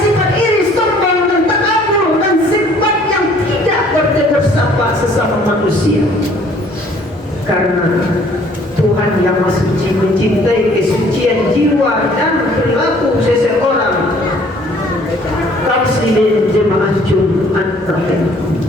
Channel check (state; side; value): normal; both; correlation 0.58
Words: manusia. Karena Tuhan yang Maha Suci mencintai kesucian jiwa dan perilaku seseorang. Kaum jemaah Jumat terakhir,